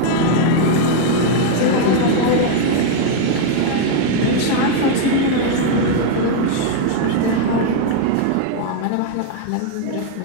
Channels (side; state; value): both; different; correlation 0.00